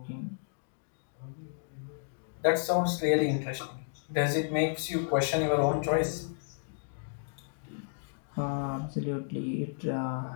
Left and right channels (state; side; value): silent; right; digital silence